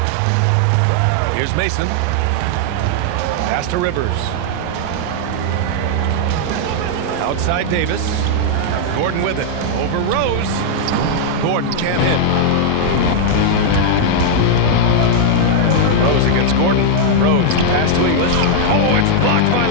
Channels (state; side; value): different; both; correlation -0.01